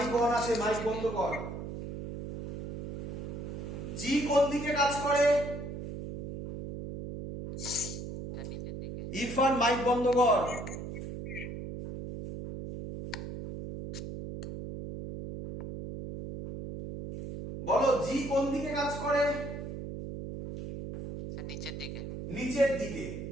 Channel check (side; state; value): right; noise; hum, 7 dB below the sound